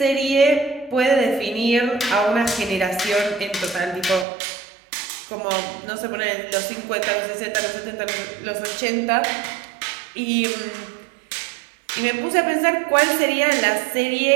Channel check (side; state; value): left; drops out; at 4.2 s